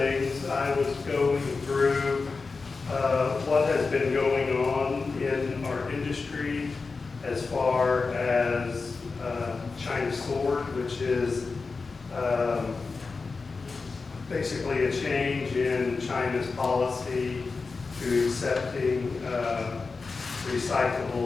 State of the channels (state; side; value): quieter; right; 4.3 dB